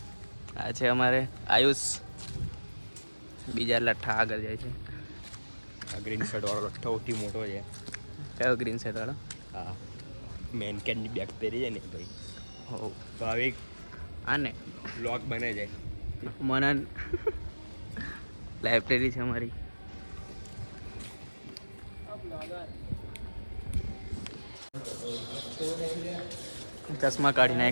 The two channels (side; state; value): both; inverted; correlation -1.00